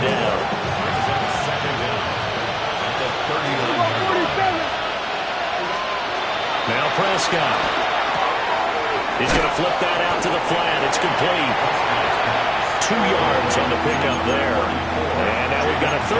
down. Now Prescott. He's going to flip that out to the flat. It's complete. 2 yards on the pickup there. And now we've got a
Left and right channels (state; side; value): identical; both; correlation 1.00